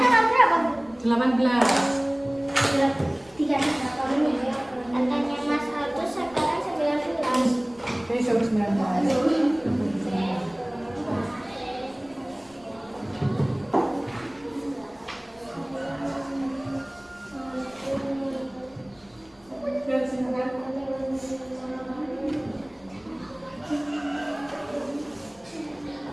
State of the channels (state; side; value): noise; left; rumble, 30 dB below the sound